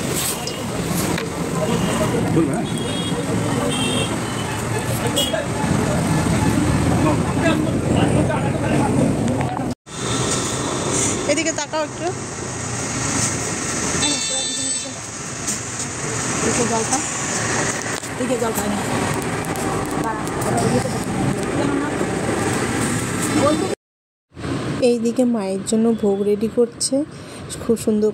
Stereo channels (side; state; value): both; identical; correlation 1.00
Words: बोल रहा है এদিকে তাকাও একটু। এইদিকে মায়ের জন্য ভোগ রেডি করছে, খুব সুন্দর